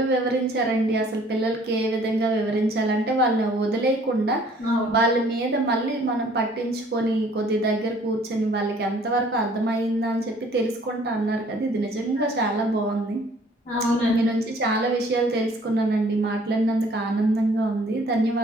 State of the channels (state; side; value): normal; both; correlation 0.56